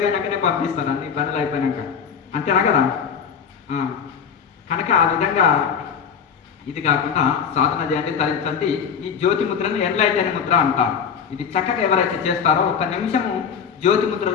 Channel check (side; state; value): right; quieter; 7.0 dB